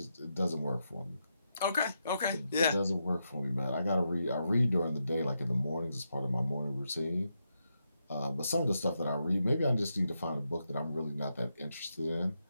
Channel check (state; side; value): inverted; both; correlation -0.84